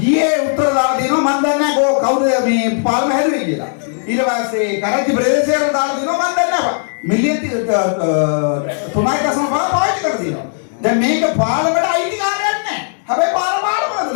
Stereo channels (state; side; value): silent; right; digital silence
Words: ये ಉತ್ತರದಾದಿನೋ ಮಂದನ್ನ ಗೋ ಕೌದ ಮಿ ಪಾಲ್ಮ ಹೆದರಿಗಿಲ್ಲ ಇಲವಾಸೆ Karachi ಪ್ರದೇಶರ ದಾದಿನೋ ಮಂದನ್ನ million ತುಮಾಯಿ ಕಸಮ poet ಕರ್ದಿನೋ the make ಪಾಲ್ಮಡ IT ಕಾರ್ಯನ್ನೆ ಹಬೆ ಪಾಲ ಪಾಲ